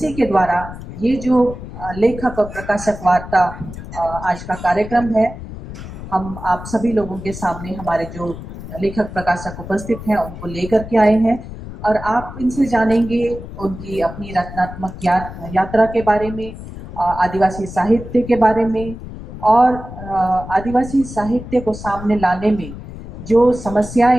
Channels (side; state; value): left; noise; rumble, 12 dB below the sound